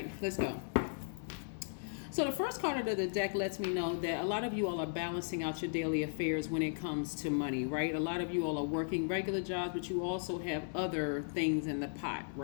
let's go. So the first card of the deck lets me know that a lot of you all are balancing out your daily affairs when it comes to money, right? A lot of you all are working regular jobs, but you also have other things in the pot,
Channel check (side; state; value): right; silent; digital silence